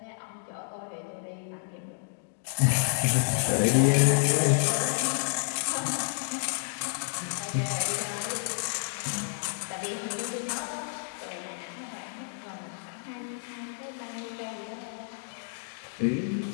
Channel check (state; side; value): silent; right; digital silence